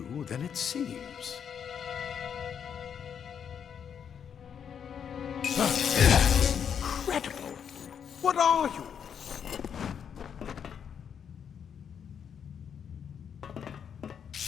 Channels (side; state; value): right; quieter; 7.8 dB